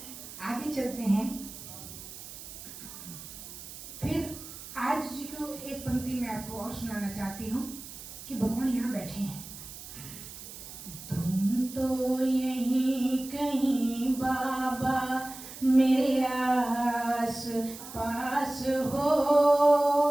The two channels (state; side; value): noise; right; hiss, 13 dB below the sound